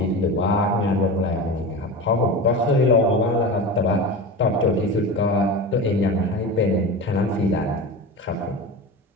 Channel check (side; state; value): both; normal; correlation 0.28